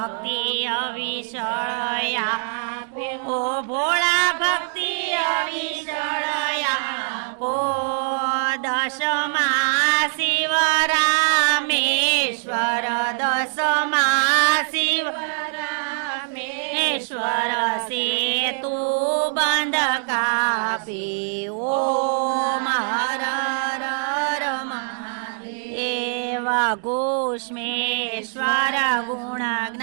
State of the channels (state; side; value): silent; left; digital silence